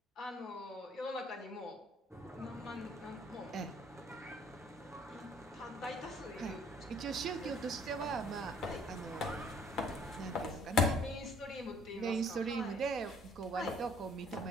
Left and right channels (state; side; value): normal; both; correlation 0.59